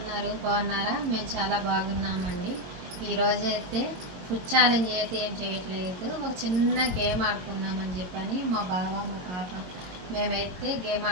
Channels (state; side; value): late; left; 22 ms